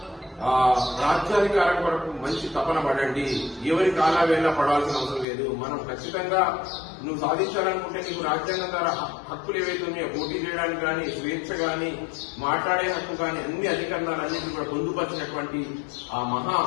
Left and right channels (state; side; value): drops out; right; at 5.2 s